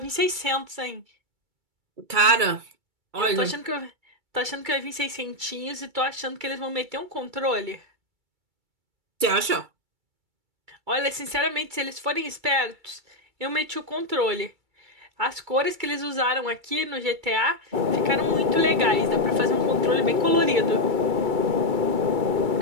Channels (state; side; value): late; left; 2.3 ms